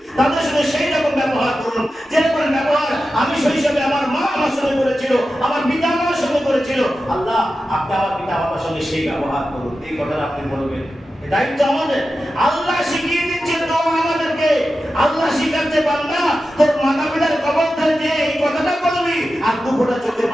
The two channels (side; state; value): both; normal; correlation 0.92